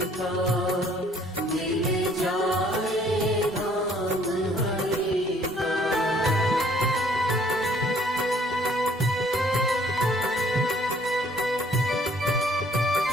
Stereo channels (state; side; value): normal; both; correlation 0.60